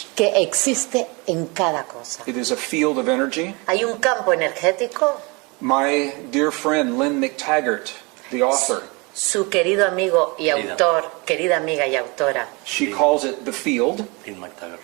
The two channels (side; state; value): left; quieter; 28.3 dB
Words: que existe en cada cosa. It is a field of energy. Hay un campo energético. My dear friend Lynn McTaggart, the author, Su querido amigo y Querida. autor, querida amiga y autora, she calls it the field. In McTaggart.